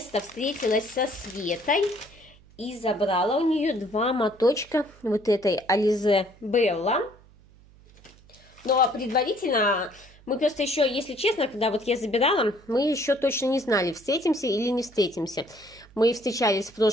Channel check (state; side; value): noise; right; hum, 26 dB below the sound